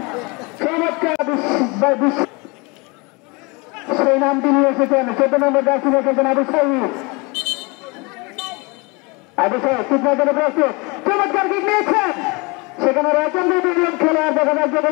চমৎকার সেই নামটি নিয়ে এসেছেন 14 নম্বর জার্সি এসেছেন আবু সাইদ কিকমার্কের প্রস্তুত চমৎকার কিক নিয়েছেন সেখানে রয়েছেন দুজন খেলোয়াড় দেখা যাচ্ছে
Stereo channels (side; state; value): right; quieter; 27.8 dB